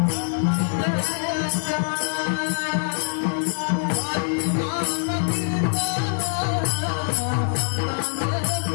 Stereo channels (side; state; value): right; silent; digital silence